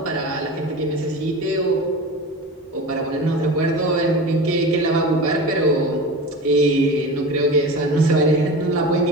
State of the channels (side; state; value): both; normal; correlation 0.31